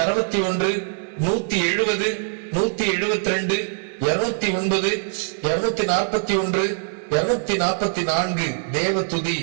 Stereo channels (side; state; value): left; silent; digital silence